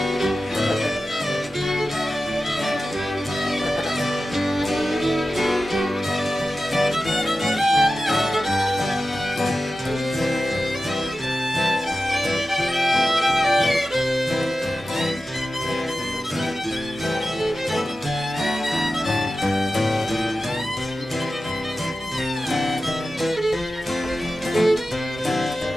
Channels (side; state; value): both; normal; correlation 0.93